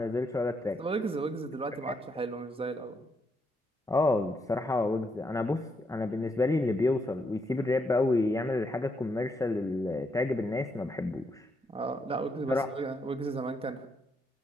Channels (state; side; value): normal; both; correlation 0.78